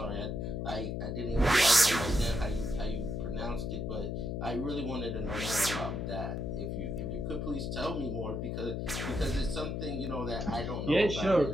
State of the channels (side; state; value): left; noise; hum, 2 dB below the sound